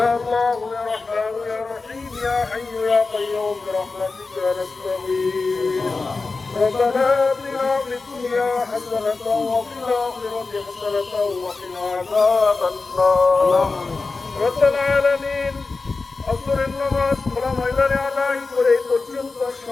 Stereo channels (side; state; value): right; quieter; 3.9 dB